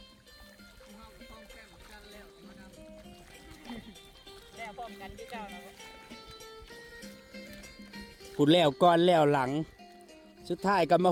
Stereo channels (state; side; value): identical; both; correlation 1.00